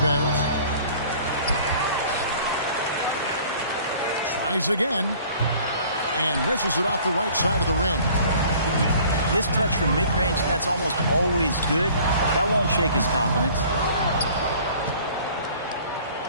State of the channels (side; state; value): both; inverted; correlation -0.51